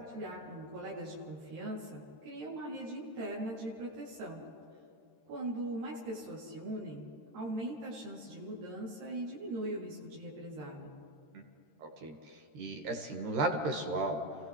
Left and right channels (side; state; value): left; late; 13 ms